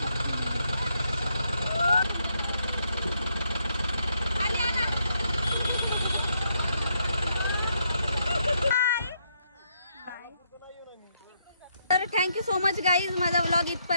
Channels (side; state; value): both; inverted; correlation -0.76